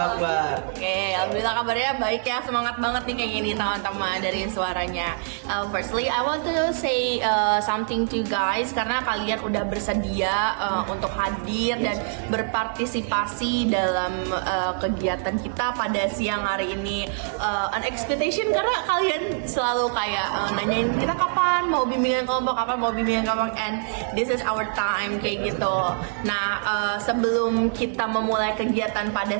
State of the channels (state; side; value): silent; left; 62 dB below the other